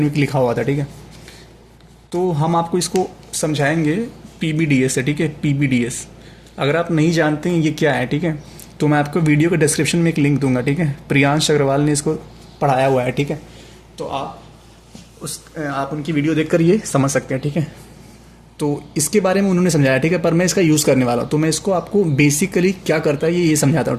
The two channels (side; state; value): both; identical; correlation 1.00